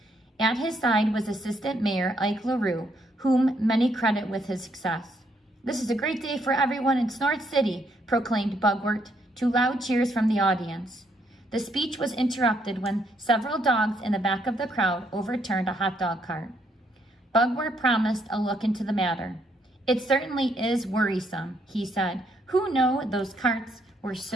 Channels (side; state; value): both; normal; correlation 0.72